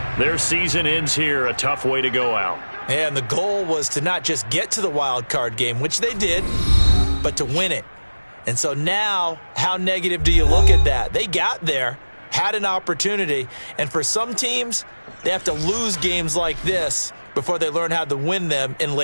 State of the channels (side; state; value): both; inverted; correlation -1.00